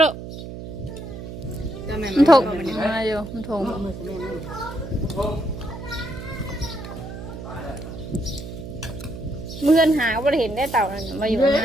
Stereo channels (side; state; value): right; noise; hum, 10 dB below the sound